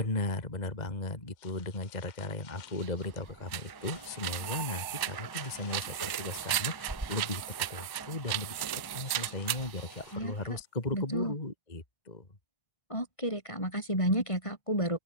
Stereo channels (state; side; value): late; right; 1.1 ms